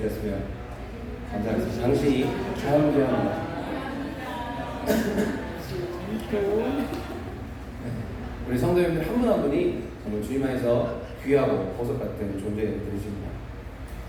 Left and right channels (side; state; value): both; identical; correlation 1.00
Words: 감사하겠습니다. 당신이 참 귀합니다. 우리 성도님들 한 분 한 분이 정말 주님 안에서 귀하고 보석 같은 존재들이십니다.